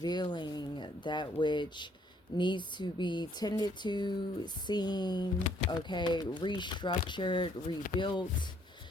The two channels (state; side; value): normal; both; correlation 0.66